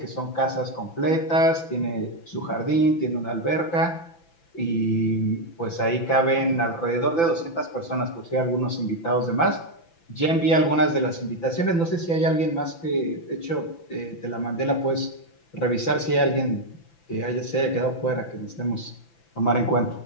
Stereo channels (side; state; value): right; late; 5.9 ms